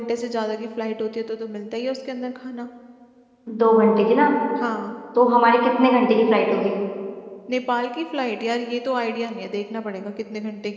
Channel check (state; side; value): identical; both; correlation 1.00